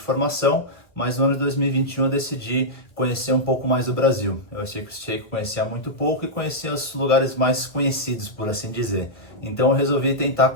mas no ano de 2021 eu decidi conhecer um pouco mais do Brasil. Eu achei que conhecia muito pouco e conhecia os lugares mais conhecidos, por assim dizer. Então eu resolvi tentar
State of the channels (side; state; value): right; late; 1.3 ms